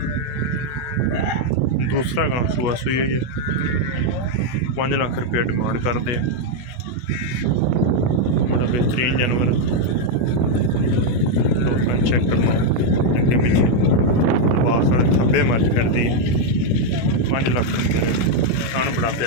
दूसरा गां सुआ सुई हुई है। 5 लाख रुपया डिमांड करते हैं। बड़ा बेहतरीन जानवर दोस्तों चेक करना अगे पिछे पास वाले थब्बे मर्च करती है। 5 लाख रुपये खान बड़ा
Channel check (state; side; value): late; right; 16 ms